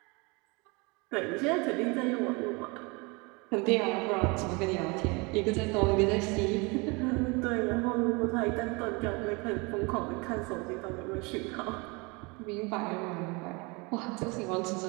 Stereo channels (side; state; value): left; quieter; 28.1 dB